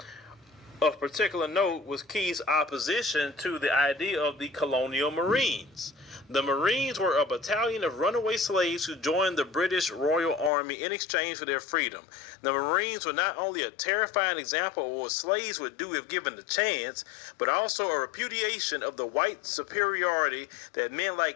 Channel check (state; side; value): drops out; right; at 10.5 s